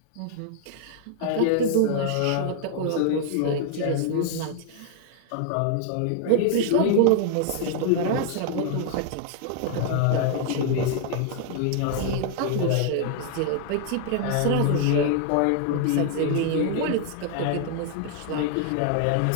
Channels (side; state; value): both; different; correlation 0.00